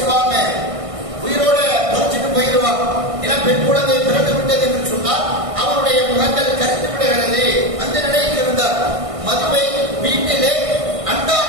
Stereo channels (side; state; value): left; late; 1.6 ms